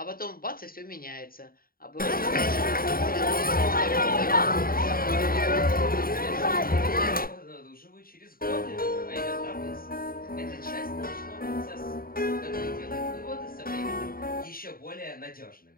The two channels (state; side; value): late; right; 0.43 ms